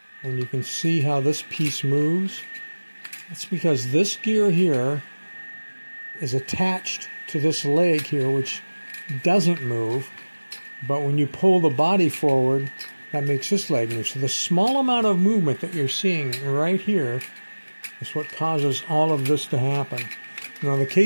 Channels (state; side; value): inverted; both; correlation -1.00